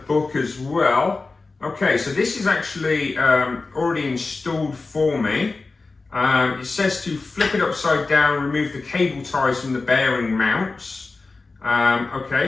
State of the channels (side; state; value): right; quieter; 3.8 dB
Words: as well. Okay, so this is actually already installed for me. It says to flip it upside down, remove the cable ties from the bearing mounts. Okay,